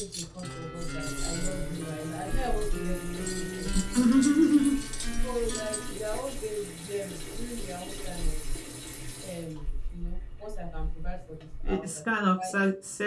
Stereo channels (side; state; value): both; identical; correlation 1.00